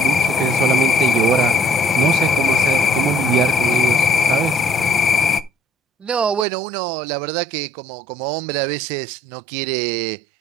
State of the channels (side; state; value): left; drops out; at 6.5 s